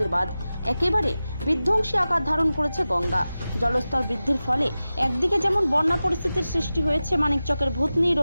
বাঁধ, একেবারে বিধ্বংসী আকার ধারণ করেছে গঙ্গা। জলস্তর বৃদ্ধির ফলে একদিকে যেমন বন্যা পরিস্থিতির সৃষ্টি হয়েছে মানিকচকের ভূতনি,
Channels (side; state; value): both; inverted; correlation -0.95